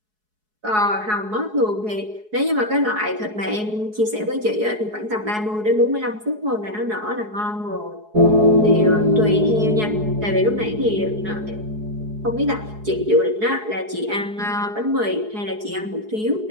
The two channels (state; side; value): late; left; 4.7 ms